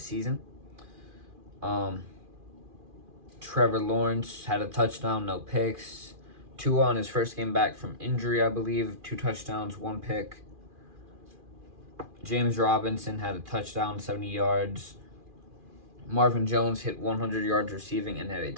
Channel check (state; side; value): late; left; 2.4 ms